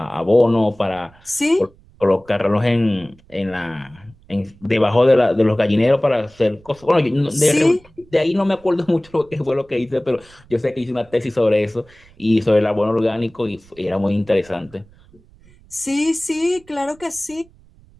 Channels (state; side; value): noise; right; rumble, 27 dB below the sound